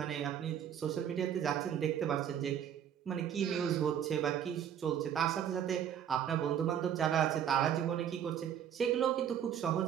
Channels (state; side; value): quieter; left; 9.3 dB